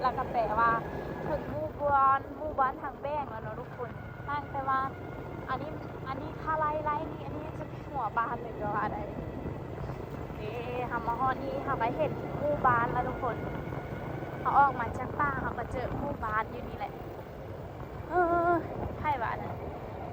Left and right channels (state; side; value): identical; both; correlation 1.00